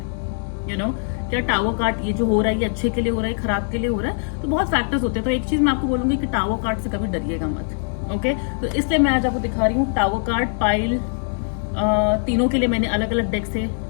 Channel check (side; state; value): right; silent; digital silence